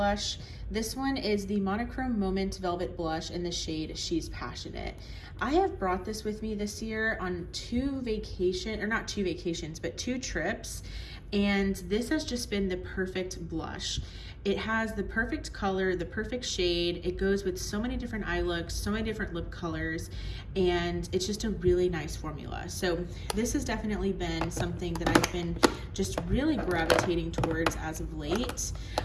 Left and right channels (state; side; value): identical; both; correlation 1.00